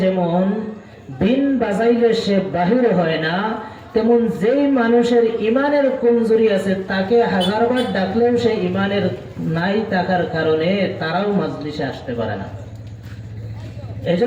যেমন বিন বাজাইলে সে বাহির হয় না, তেমন যেই মানুষের ইমানের কমজোরি আছে তাকে হাজারবার ডাকলেও সে ইমানের নাই থাকার কারণে তারাও মাজলিসে আসতে পারে না।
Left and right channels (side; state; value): both; identical; correlation 1.00